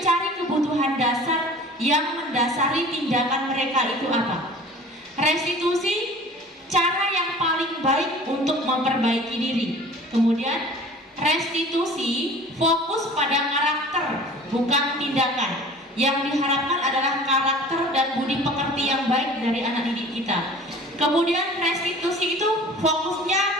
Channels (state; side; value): normal; both; correlation 0.44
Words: kebutuhan dasar yang mendasari tindakan mereka itu apa. Restitusi cara yang paling baik untuk memperbaiki diri. Kemudian restitusi fokus pada karakter, bukan tindakan. Yang diharapkan adalah karakter dan budi pekerti yang baik dari anak didik kita. Kemudian restitusi itu fokusnya